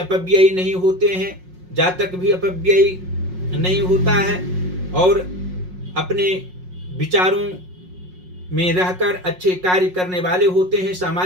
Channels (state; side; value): late; left; 5.5 ms